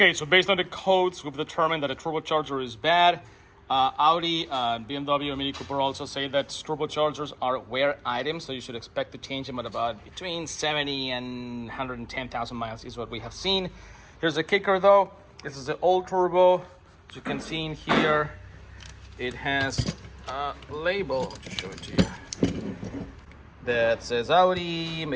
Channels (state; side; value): identical; both; correlation 1.00